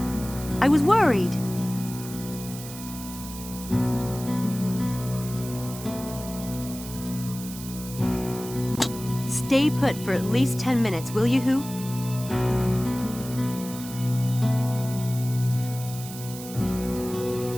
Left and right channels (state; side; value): noise; right; hiss, 13 dB below the sound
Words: I was worried. Stay put for at least 10 minutes, will you, Who?